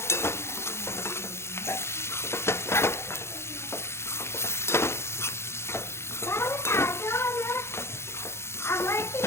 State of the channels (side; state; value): right; late; 0.13 ms